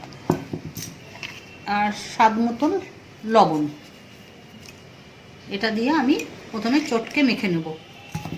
আর স্বাদ মতন লবণ। এটা দিয়ে আমি প্রথমে চটকে মেখে নেব।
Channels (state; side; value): identical; both; correlation 1.00